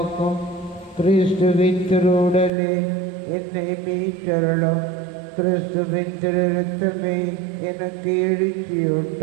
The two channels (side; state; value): left; drops out; at 2.5 s